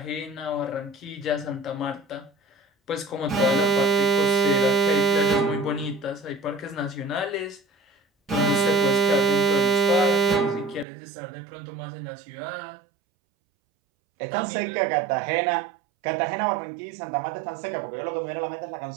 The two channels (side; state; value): left; drops out; at 10.9 s